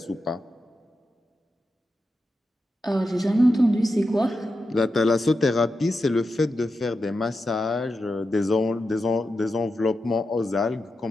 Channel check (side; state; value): both; normal; correlation 0.89